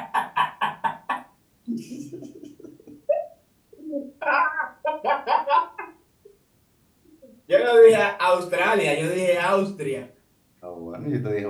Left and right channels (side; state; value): both; identical; correlation 1.00